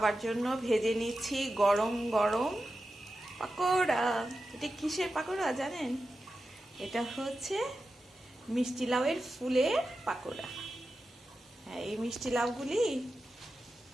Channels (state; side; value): normal; both; correlation 0.91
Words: জন্য ভেজে নিচ্ছি গরম গরম পাকোড়া। এটা কিসের পাকোড়া জানেন? এটা হচ্ছে মিষ্টি লাউয়ের ফুলের পাকোড়া। হ্যাঁ, এই মিষ্টি লাউগুলি